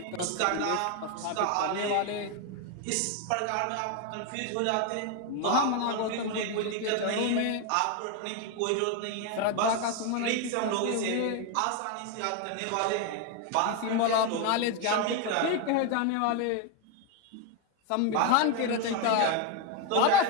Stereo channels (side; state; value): both; different; correlation 0.02